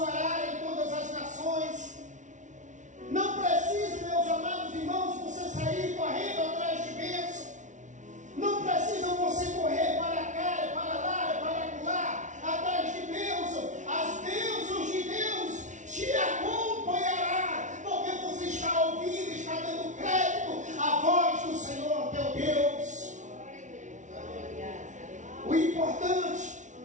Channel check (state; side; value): late; left; 0.36 ms